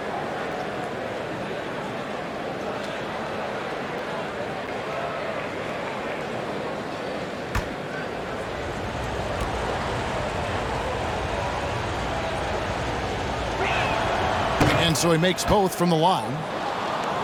And And so he makes both from the line.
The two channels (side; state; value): both; identical; correlation 1.00